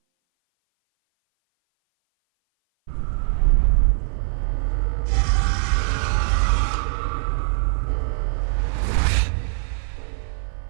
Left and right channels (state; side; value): silent; left; 57 dB below the other